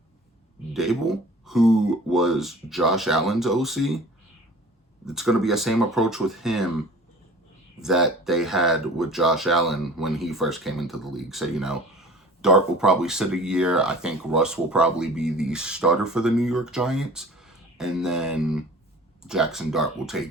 Dable, who was Josh Allen's OC, it's going to be the same approach with him that they had with Josh Allen when he first came into the league. So, Dart will probably sit a year. I think Russ will probably be the starter for the New York Giants. And then Jackson Dart will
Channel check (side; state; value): both; normal; correlation 0.44